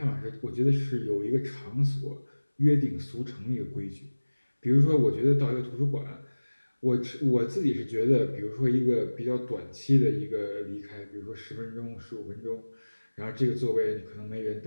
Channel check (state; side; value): inverted; both; correlation -1.00